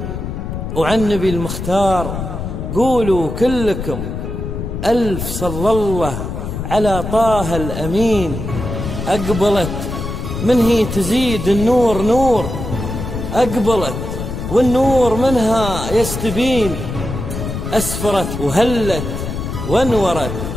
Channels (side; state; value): left; noise; rumble, 6 dB below the sound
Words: وعن نبي المختار قولوا كلكم ألف صلى الله على طه الأمين. أقبلت من هي تزيد النور نور، أقبلت والنور منها يستبين، أسفرت وهلت وانورت،